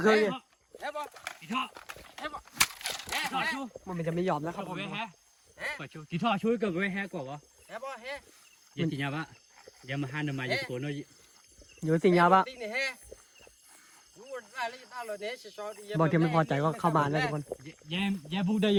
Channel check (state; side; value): identical; both; correlation 1.00